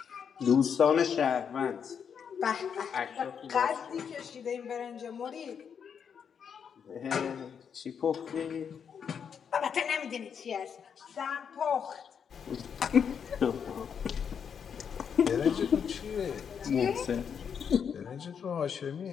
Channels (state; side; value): quieter; right; 7.2 dB